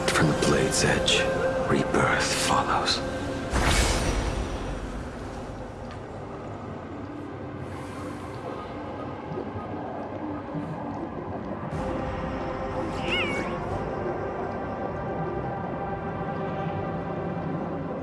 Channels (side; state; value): both; identical; correlation 1.00